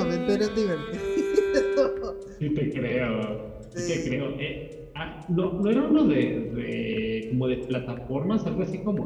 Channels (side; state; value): both; identical; correlation 1.00